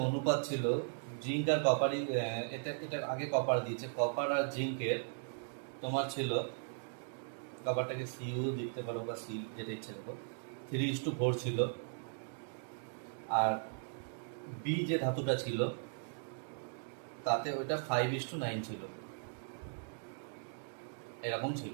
অনুপাত ছিল জিঙ্ক আর কপারই, এটা এটা আগে কপার দিয়েছে, কপার আর জিঙ্কের তোমার ছিল, কপারটাকে সিইউ দিতে পারো বা সি যেটা ইচ্ছে দেখো, 3:4 ছিল। আর বি যে ধাতুটা ছিল তাতে ওইটা 5:9 ছিল, এরকম ছিল।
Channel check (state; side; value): silent; left; digital silence